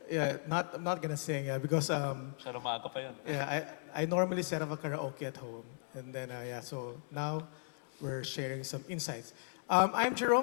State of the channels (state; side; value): silent; right; digital silence